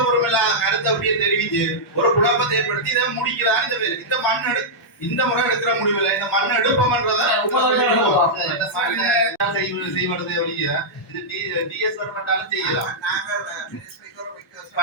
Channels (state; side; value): normal; both; correlation -0.09